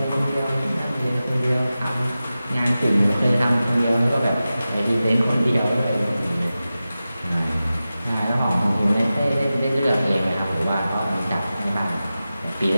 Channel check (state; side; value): inverted; both; correlation -0.94